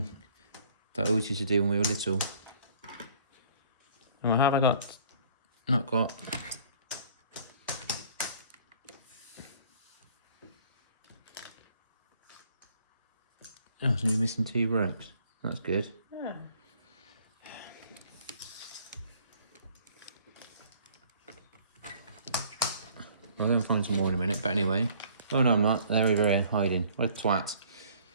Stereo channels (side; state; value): both; inverted; correlation -0.56